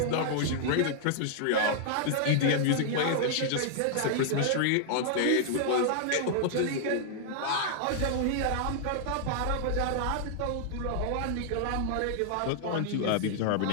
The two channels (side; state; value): both; different; correlation -0.01